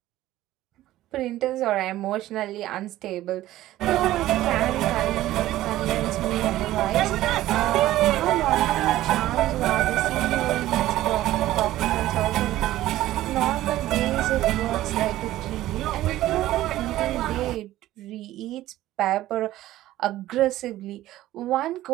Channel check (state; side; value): quieter; left; 15.0 dB